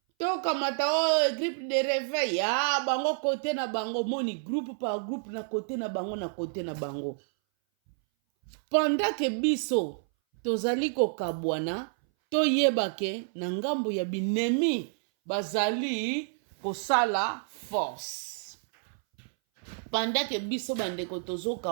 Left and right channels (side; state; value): left; silent; 58 dB below the other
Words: Tokamata groupe de réveil bango kote na bango. Moni groupe par groupe na kote na bango na kote na bango. Pendant que biso tozali ko kabwana toyebake na ngambo ya binemi bazali kosala force. Pendant que biso bandeko tozo